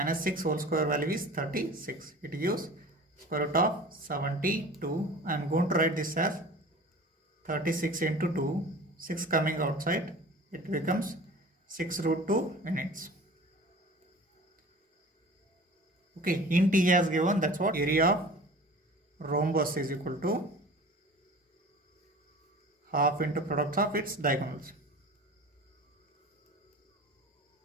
whole square value is 36. It gives square root of 72. I am going to write this as 36 into 2, 6 coming outside, it becomes 6 root 2 units. Okay, int he has given, that's what area of rhombus is equal to half into product of its diagonals.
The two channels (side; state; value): both; normal; correlation 0.41